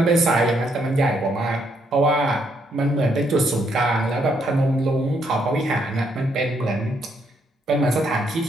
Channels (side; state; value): both; normal; correlation 0.74